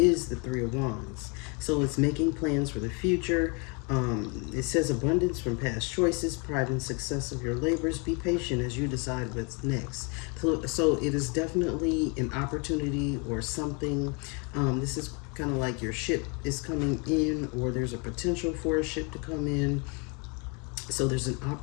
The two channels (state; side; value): quieter; right; 32.8 dB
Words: the Three of Wands. So it's making plans for the future. It says abundance from past choices, pride and success of your labors. Be patient as you decide what's next. So it is definitely an opportunity or something. This is kind of like your ship is coming in, or there's a potential for a ship to come in. So there's an